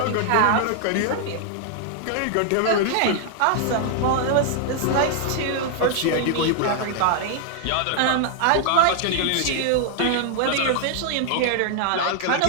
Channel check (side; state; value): both; different; correlation 0.00